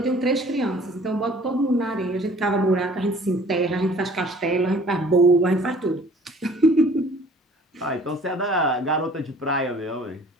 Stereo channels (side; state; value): both; normal; correlation 0.52